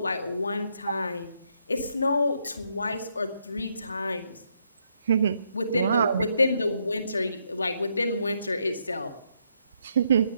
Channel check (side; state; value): both; inverted; correlation -0.76